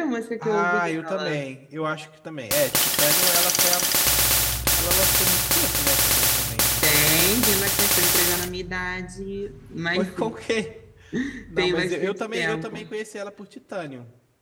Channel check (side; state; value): both; identical; correlation 1.00